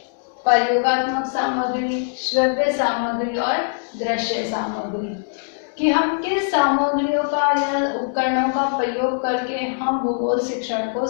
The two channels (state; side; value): silent; right; digital silence